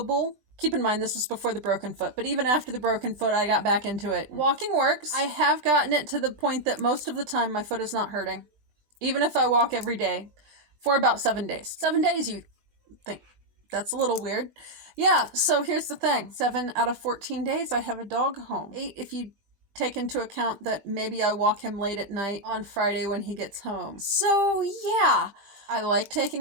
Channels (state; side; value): late; left; 20 ms